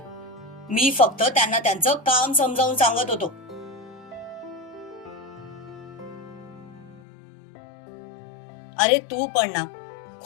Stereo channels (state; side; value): drops out; right; at 7.0 s